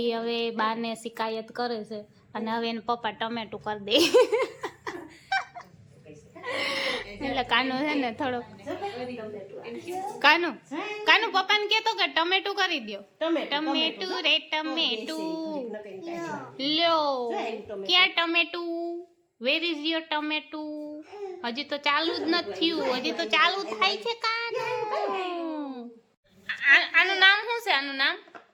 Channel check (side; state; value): both; identical; correlation 1.00